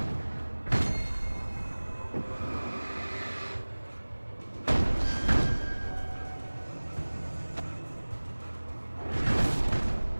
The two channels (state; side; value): inverted; both; correlation -1.00